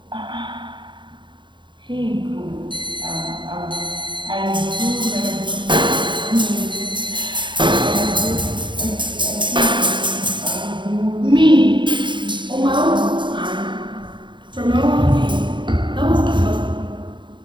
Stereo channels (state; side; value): late; left; 0.23 ms